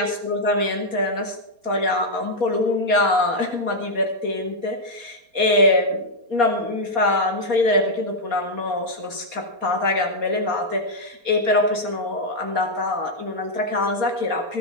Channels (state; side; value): late; left; 4.3 ms